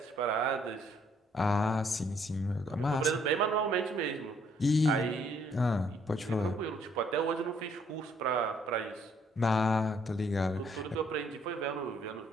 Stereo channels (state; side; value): normal; both; correlation 0.66